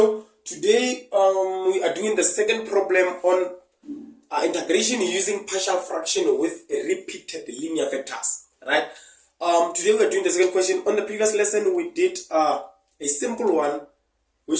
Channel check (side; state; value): both; identical; correlation 1.00